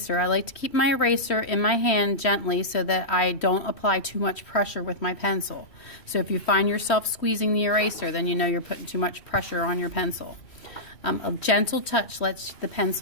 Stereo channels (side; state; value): right; late; 3.1 ms